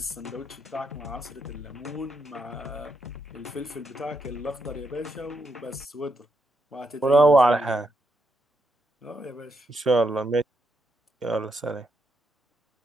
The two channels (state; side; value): normal; both; correlation 0.81